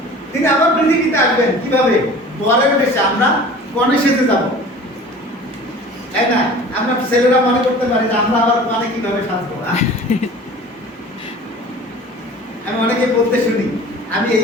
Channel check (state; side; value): normal; both; correlation 0.43